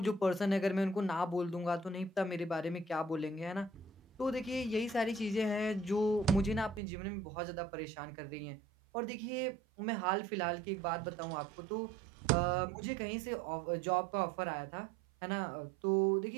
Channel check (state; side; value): drops out; left; at 6.8 s